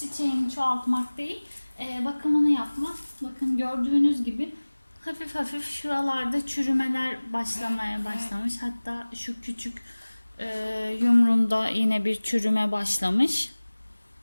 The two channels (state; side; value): inverted; both; correlation -1.00